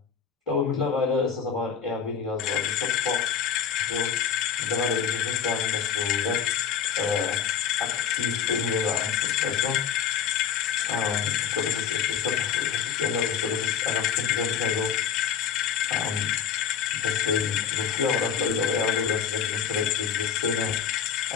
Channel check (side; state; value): right; quieter; 7.7 dB